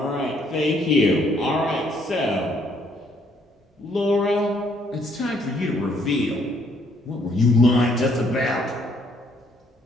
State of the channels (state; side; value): normal; both; correlation 0.67